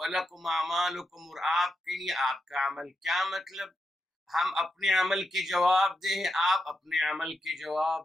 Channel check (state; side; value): normal; both; correlation 0.85